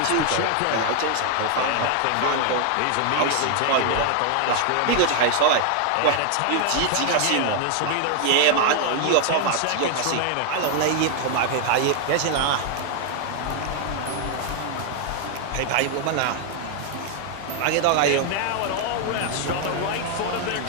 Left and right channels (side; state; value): both; different; correlation 0.00